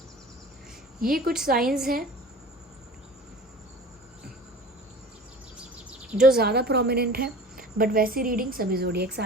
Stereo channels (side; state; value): both; normal; correlation 0.40